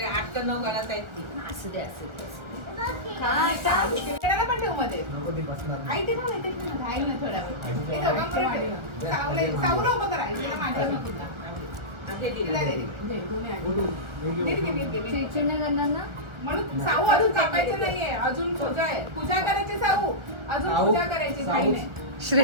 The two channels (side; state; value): left; late; 1.4 ms